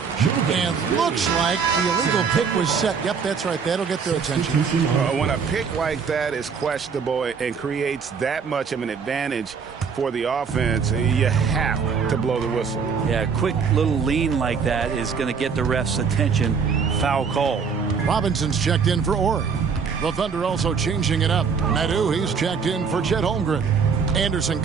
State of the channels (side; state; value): left; quieter; 6.0 dB